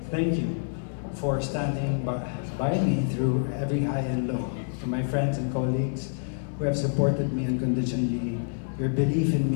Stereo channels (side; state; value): right; silent; 60 dB below the other